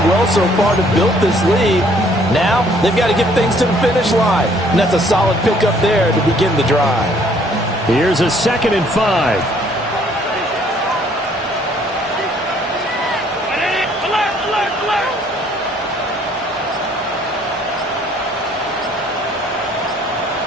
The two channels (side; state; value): both; normal; correlation 0.62